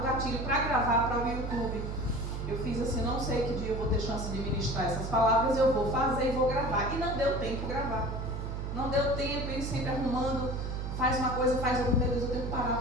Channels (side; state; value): right; noise; hum, 4 dB below the sound